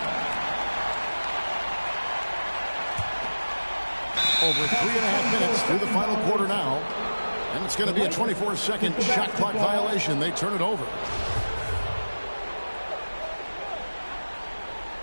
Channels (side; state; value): both; inverted; correlation -1.00